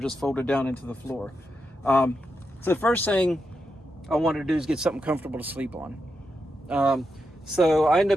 folded down into the floor. So the first thing I wanted to do is get something comfortable to sleep on. So I ended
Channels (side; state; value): both; normal; correlation 0.86